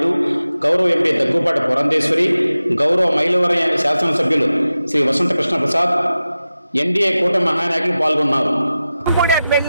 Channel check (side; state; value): both; inverted; correlation -0.93